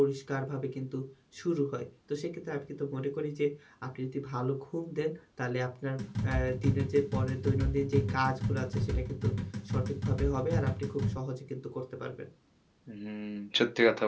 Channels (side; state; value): both; identical; correlation 1.00